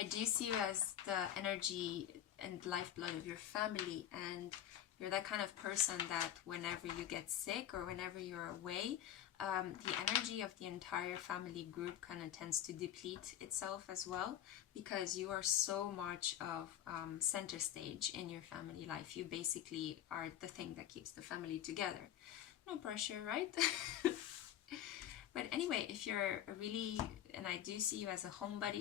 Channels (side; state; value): right; quieter; 11.2 dB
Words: I do see you as the energy and lifeblood of your family, and you're that kind of person that whenever you get sick or whenever you're away, the energy of the entire family group kind of tends to deplete itself as well, because you are so much of center stage in your family life. You basically are the thing that keeps the family together. No pressure, right? But anyway, if you're and I do see you as a